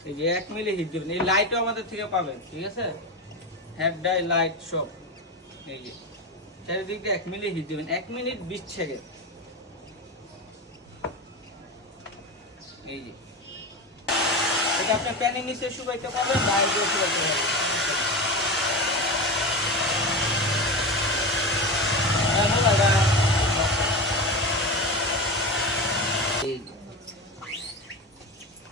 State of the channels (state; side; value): normal; both; correlation 0.21